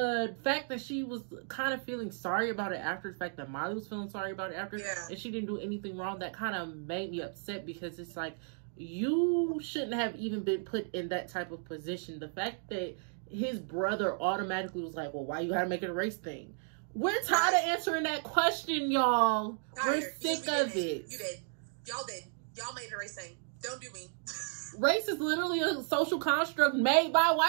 fact that she was kind of feeling sorry about it after, the fact that Molly was feeling sorry about it after, and she didn't do anything wrong, that kind of made me upset, because it's like, you shouldn't have even been put in that type of position. The fact that his brother automatically was like, well, why you gotta make it a race thing? We're tired of answering that question, y'all. We're sick of it. You did. Y'all did. Y'all made it a race thing. Don't do me. Race is literally a social construct made by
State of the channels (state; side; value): silent; left; 55 dB below the other